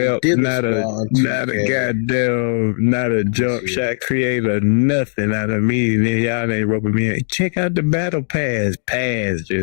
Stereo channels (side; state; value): right; silent; digital silence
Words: not a goddamn, not a jump shot creator, nothing out of me. Then y'all ain't roping me in. Check out the battle pass.